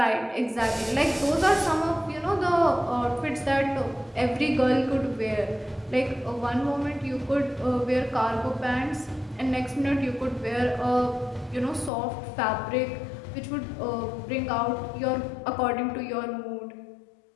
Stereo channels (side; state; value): right; drops out; at 11.9 s